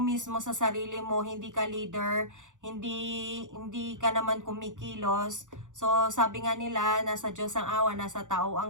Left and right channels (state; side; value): late; left; 0.86 ms